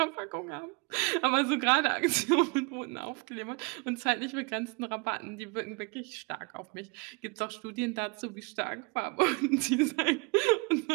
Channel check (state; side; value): quieter; left; 30.7 dB